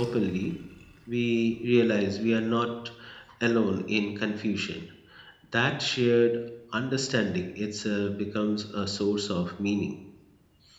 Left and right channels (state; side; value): identical; both; correlation 1.00